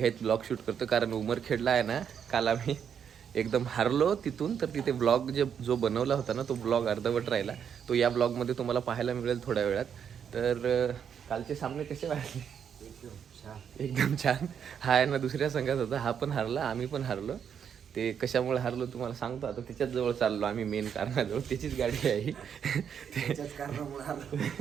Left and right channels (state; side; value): quieter; left; 7.9 dB